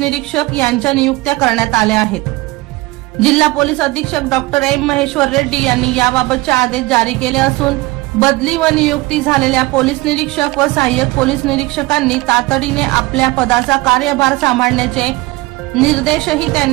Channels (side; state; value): left; quieter; 20.9 dB